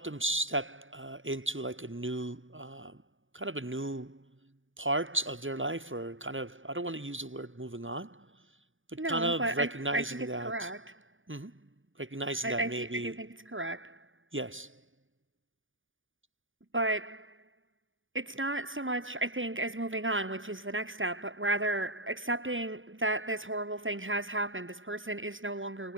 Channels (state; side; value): late; left; 0.57 ms